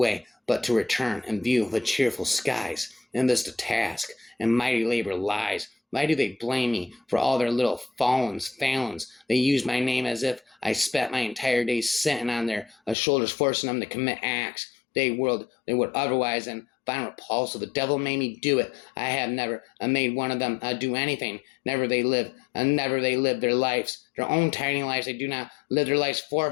but to return and view the cheerful skies. In this the task, and mighty labor lies. Why do they blame me for all their little failings? They use my name as if I spent my entire days sitting on their shoulders, forcing them to commit acts they would otherwise and find repulsive. The devil made me do it. I have never made one of them do anything. Never they live their lives, their own tiny lives. They do not live their lives for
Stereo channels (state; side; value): drops out; right; at 13.0 s